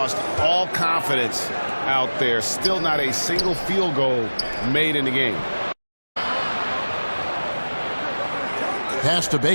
all confidence out there. Still not a single field goal made in the game. Pass to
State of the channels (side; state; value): both; inverted; correlation -1.00